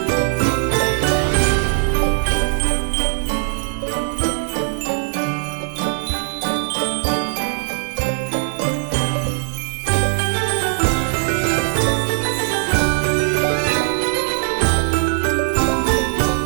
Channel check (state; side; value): silent; left; digital silence